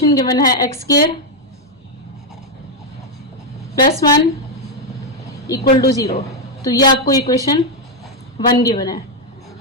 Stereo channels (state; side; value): normal; both; correlation 0.02